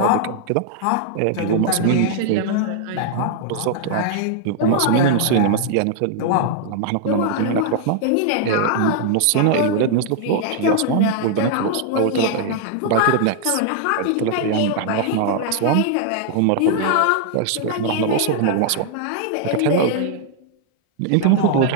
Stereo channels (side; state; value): both; different; correlation 0.00